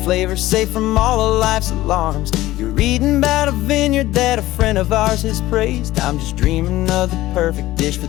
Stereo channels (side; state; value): right; quieter; 16.5 dB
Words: flavors safe from all of life's alarms. You're reading about a vineyard that a friend of ours has praised. I'm just dreaming of the perfect dish for